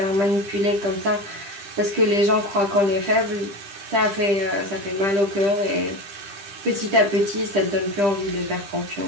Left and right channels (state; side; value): late; left; 10 ms